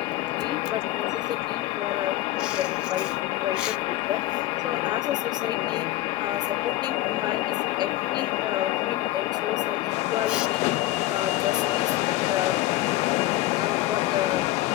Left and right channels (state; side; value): quieter; right; 16.0 dB